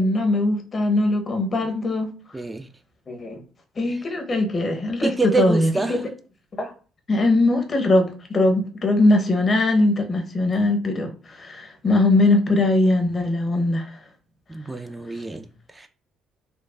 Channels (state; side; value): normal; both; correlation 0.73